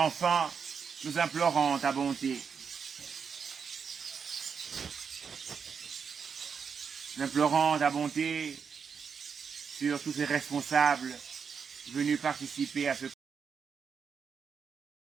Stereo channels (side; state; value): left; quieter; 6.3 dB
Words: nous implorons ta bonté. Nous implorons ta bonté sur tous ces responsables venus participer à ce